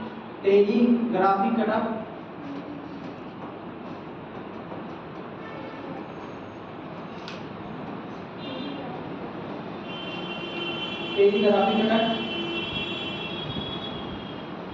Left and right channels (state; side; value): identical; both; correlation 1.00